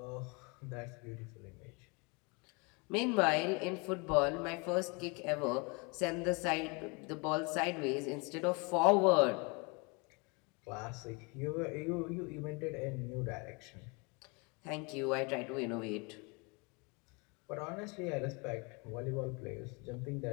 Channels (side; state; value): right; quieter; 30.4 dB